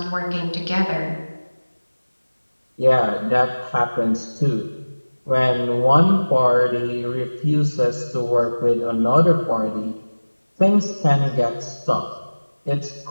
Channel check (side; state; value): both; inverted; correlation -1.00